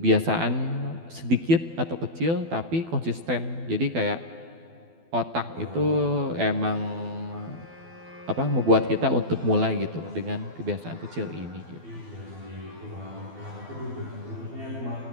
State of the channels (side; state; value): left; late; 12 ms